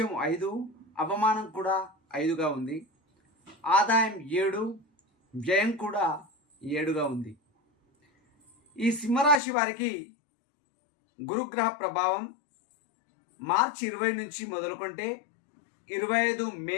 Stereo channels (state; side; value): drops out; right; at 9.4 s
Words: 5, అవమానం కూడా 5గా ఉంది. ఆదాయం 7, వ్యయం కూడా 7గా ఉంది. ఈ సింహరాశి వారికి గురుగ్రహ ప్రభావం మార్చి 20 నుంచి మొదలుకుంటే 25